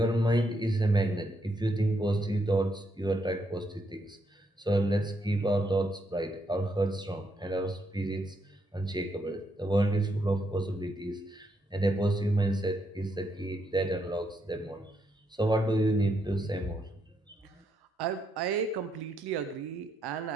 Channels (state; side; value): normal; both; correlation 0.78